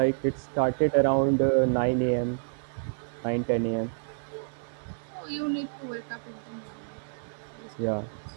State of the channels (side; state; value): left; silent; digital silence